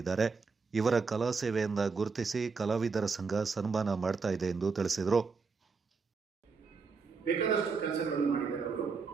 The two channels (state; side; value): quieter; left; 4.9 dB